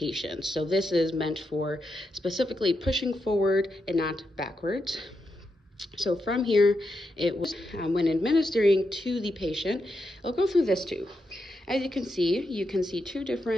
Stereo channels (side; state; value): both; normal; correlation 0.84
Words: So this is meant for specifically pushing forward and not backwards. So from here, it was when administering to the patient, it'll go through this tube. As you can see two